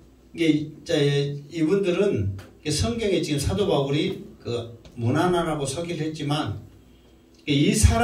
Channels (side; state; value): both; identical; correlation 1.00